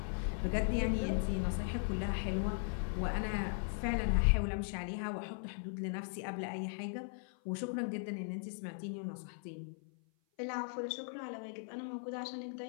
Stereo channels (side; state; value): right; silent; 52 dB below the other